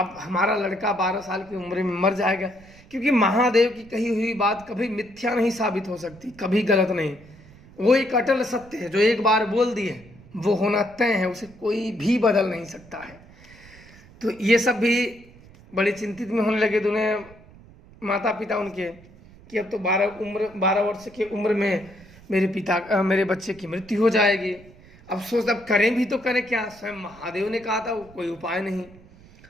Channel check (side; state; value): right; noise; rumble, 23 dB below the sound